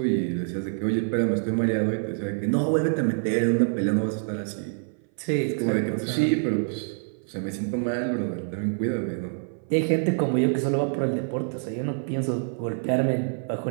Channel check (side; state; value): left; silent; 58 dB below the other